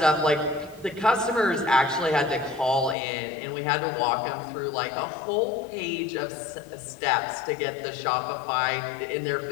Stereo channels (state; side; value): drops out; right; at 3.0 s